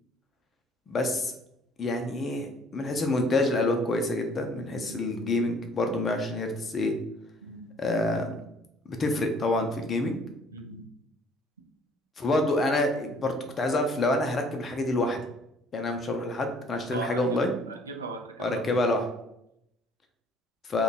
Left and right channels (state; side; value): normal; both; correlation 0.57